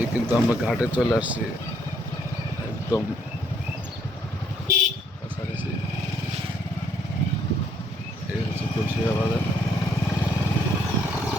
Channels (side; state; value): both; normal; correlation 0.68